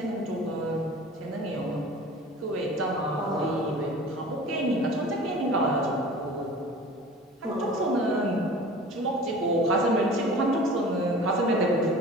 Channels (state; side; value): normal; both; correlation 0.41